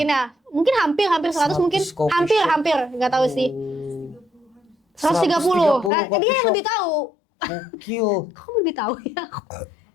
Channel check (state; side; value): drops out; right; at 5.9 s